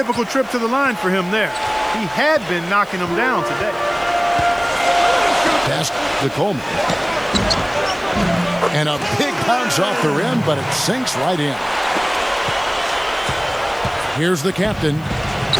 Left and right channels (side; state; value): left; noise; hiss, 26 dB below the sound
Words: trip to the line for him there. He had been knocking them down today. Pass to Coleman. And a big bounce off the rim, but it sinks right in. Here's the captain.